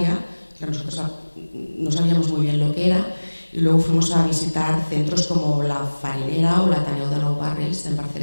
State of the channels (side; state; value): both; inverted; correlation -1.00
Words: que nosotros no sabíamos muy bien lo que era, y luego fuimos a visitar centros como la Farinera o la Ateneu de Nou Barris en